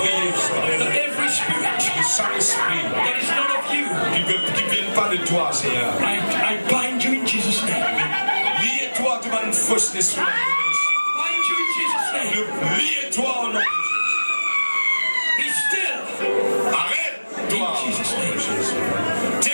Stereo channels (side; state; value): both; inverted; correlation -1.00